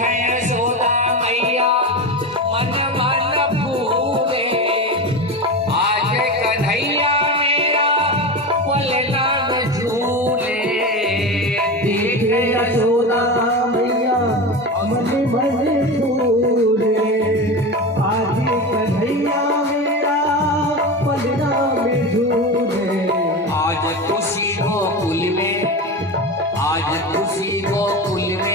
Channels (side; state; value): both; normal; correlation 0.23